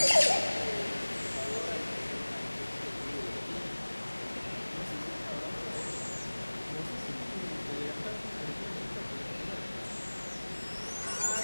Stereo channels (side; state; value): both; inverted; correlation -1.00